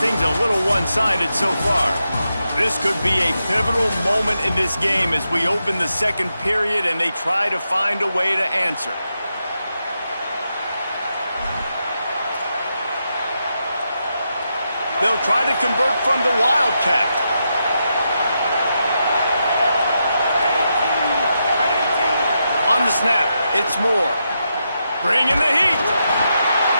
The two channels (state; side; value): inverted; both; correlation -0.85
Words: things are a little one-sided so far. This could be a pivotal moment in this game as we open the 2nd period and they try to find a way to answer. They'll try to convert from the Wildcat. On the snap, it's Moore. Bringing the heat.